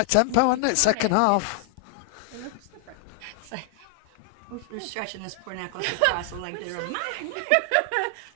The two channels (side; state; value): both; different; correlation 0.00